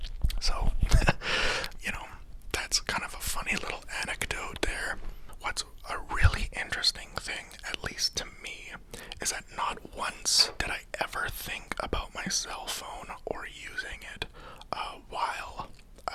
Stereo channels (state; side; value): identical; both; correlation 1.00